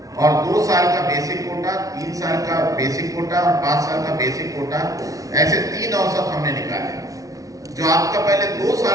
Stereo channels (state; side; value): late; left; 0.17 ms